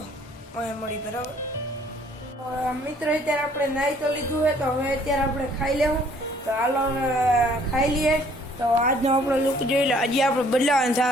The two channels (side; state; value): both; normal; correlation 0.59